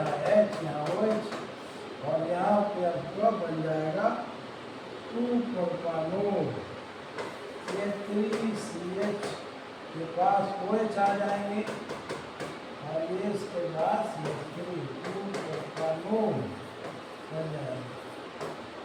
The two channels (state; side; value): identical; both; correlation 1.00